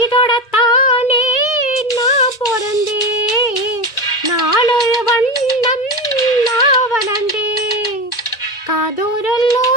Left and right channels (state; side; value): late; right; 2.1 ms